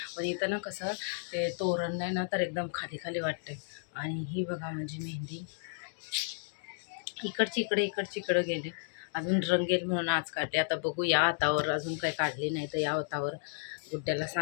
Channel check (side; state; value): right; silent; digital silence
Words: पण इथं ना कसं ते तोरण नाही ना तर एकदम खाली खाली वाटते. आणि ही बघा माझी मेहंदी इकडची इकडे गेली. अजून रंगेल म्हणून आज काढले. आता बघू या हातावर अजून काही काढली नाही, तर या हातावर गुड्ड्याला